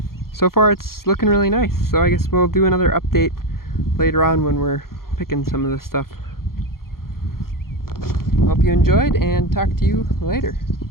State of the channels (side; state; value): right; late; 0.93 ms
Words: So far it's looking really nice, so I guess we'll do another update later on when we're picking some of this stuff. Hope you enjoyed, and talk to you later.